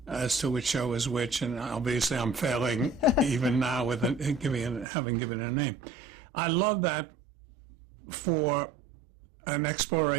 as to which show is which, and obviously I'm failing even now with having given a name. I love that for an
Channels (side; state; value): left; drops out; at 4.9 s